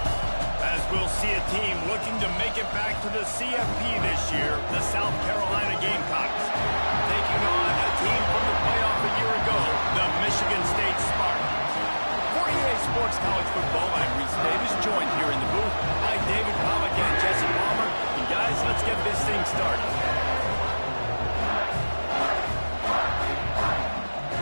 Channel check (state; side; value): inverted; both; correlation -1.00